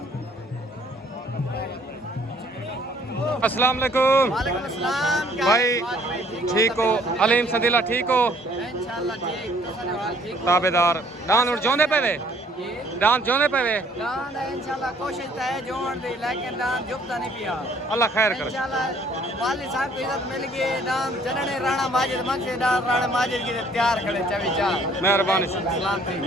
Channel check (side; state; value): both; normal; correlation 0.60